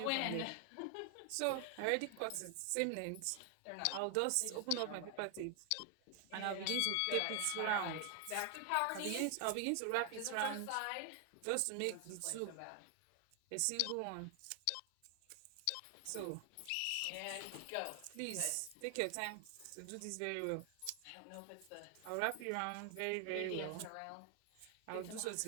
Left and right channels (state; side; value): different; both; correlation 0.00